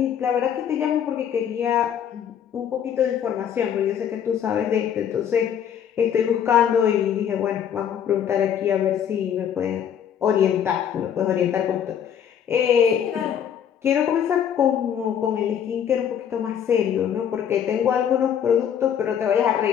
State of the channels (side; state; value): right; quieter; 8.8 dB